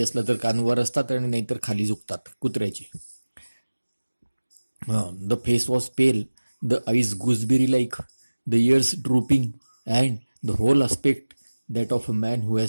असला तर कान वर असतात आणि नाहीतर खाली झुकतात कुत्र्याचे. The face was pale, the eyes gooseberry-like, the ears drooping, and the whole aspect that of a man who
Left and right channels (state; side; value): inverted; both; correlation -1.00